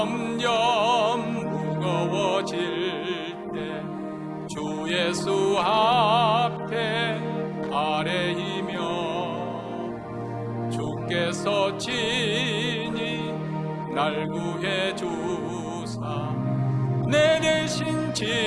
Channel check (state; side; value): identical; both; correlation 1.00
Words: 무거워질 때 주 예수 앞에 아뢰이며 주께서 친히 날 구해 주사 내 대신